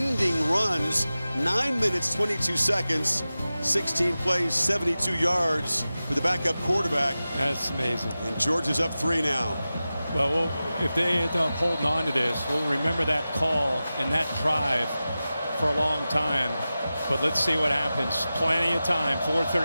runs, 9 minutes, 22 seconds, 16 plays, 72 yards with the backup quarterback. That's amazing. And Georgia's up 3 now. Well, if they end up holding on to this, we'll remember that call and that drive for a long time. But let's see what happens. Plenty of time,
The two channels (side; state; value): both; inverted; correlation -0.95